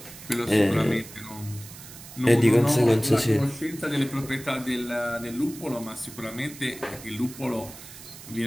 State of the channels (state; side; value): noise; right; hiss, 16 dB below the sound